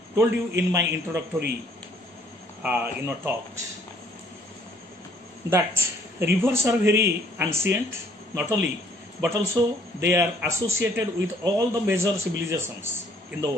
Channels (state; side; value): normal; both; correlation 0.61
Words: told you in my introductory talks that rivers are very ancient, not only, but also they are associated with all the major civilizations in the